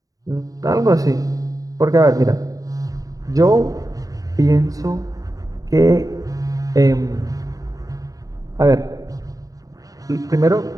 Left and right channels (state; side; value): late; left; 0.17 ms